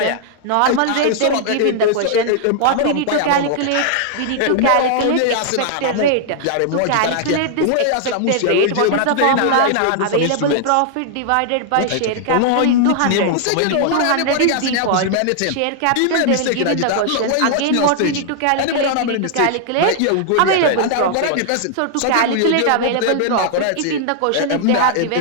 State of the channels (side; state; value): both; different; correlation -0.01